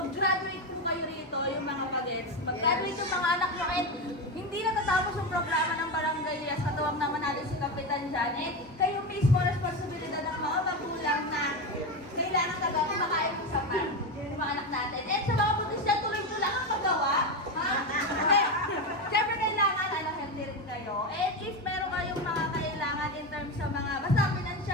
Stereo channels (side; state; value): both; normal; correlation 0.15